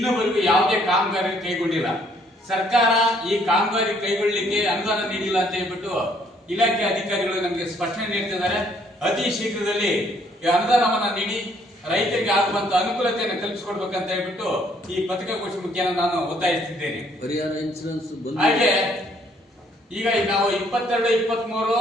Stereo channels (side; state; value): both; normal; correlation 0.65